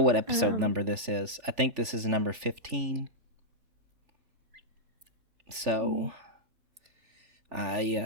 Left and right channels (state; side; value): late; left; 3.4 ms